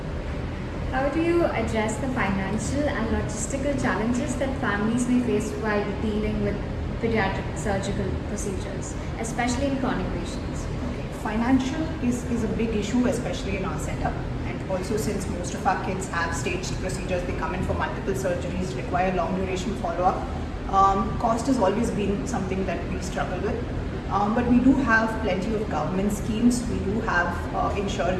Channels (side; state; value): both; identical; correlation 1.00